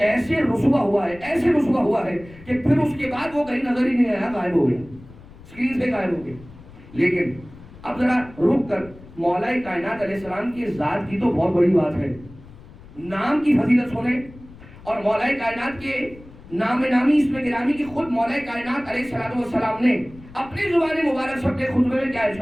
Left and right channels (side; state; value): left; noise; rumble, 20 dB below the sound